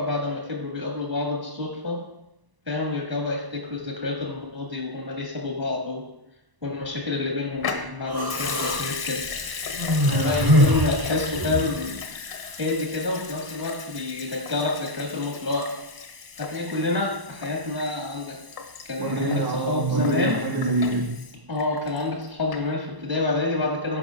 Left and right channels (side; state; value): left; late; 1.0 ms